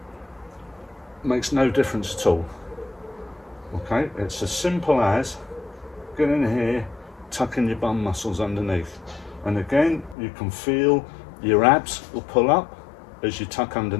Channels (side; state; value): right; drops out; at 10.2 s